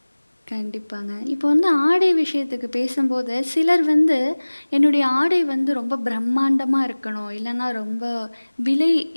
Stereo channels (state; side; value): inverted; both; correlation -1.00